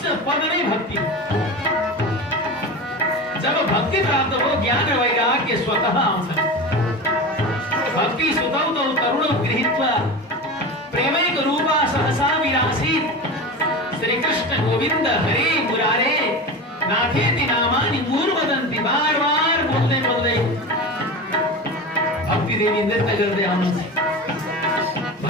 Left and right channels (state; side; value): normal; both; correlation 0.27